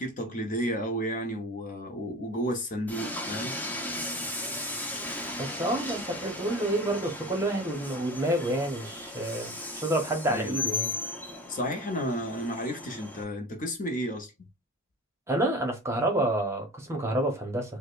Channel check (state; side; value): normal; both; correlation 0.35